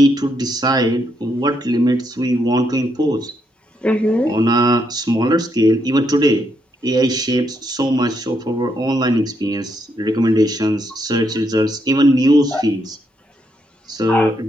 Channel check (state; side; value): normal; both; correlation 0.77